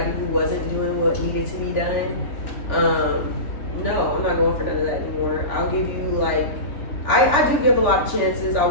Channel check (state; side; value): late; right; 3.4 ms